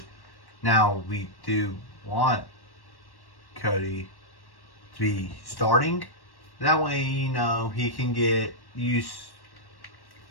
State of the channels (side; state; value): right; late; 1.1 ms